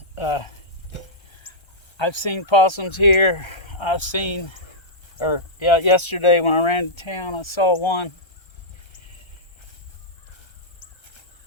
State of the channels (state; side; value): late; right; 1.3 ms